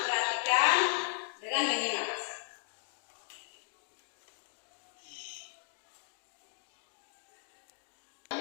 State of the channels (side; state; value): right; silent; digital silence